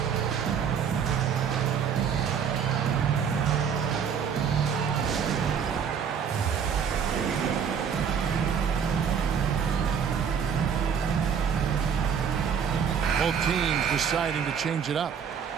Both teams deciding to change it up.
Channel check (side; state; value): left; quieter; 7.3 dB